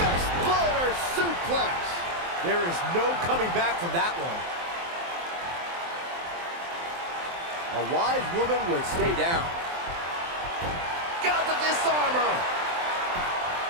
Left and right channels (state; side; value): late; left; 23 ms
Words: suplex. There is no coming back from that one. A wise woman would stay down. Got the disarmer.